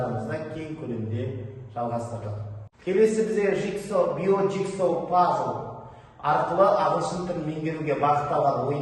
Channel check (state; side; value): identical; both; correlation 1.00